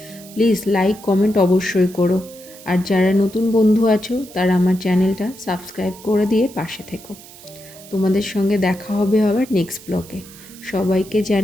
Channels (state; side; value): noise; right; hiss, 19 dB below the sound